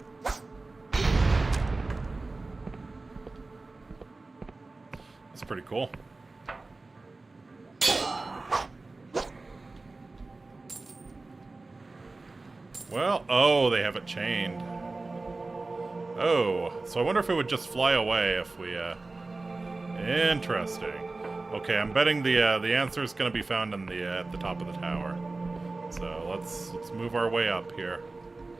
That's pretty cool. Well, oh, they have it chained. Oh, so I wonder if it would just fly away if we, Interesting. Okay, I'm betting the answer is going to be found in the at the top of the tower. So let's move our way up here.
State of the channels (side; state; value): left; quieter; 3.4 dB